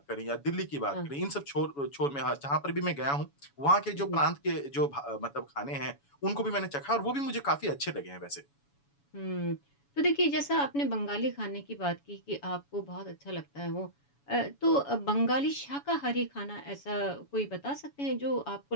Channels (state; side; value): late; right; 7.1 ms